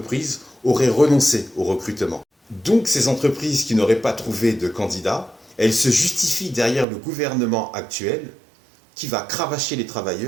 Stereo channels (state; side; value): drops out; left; at 6.9 s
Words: auraient renoncé au recrutement. Donc ces entreprises qui n'auraient pas trouvé de candidats, elles se justifient derrière le gouvernement actuel qui va cravacher les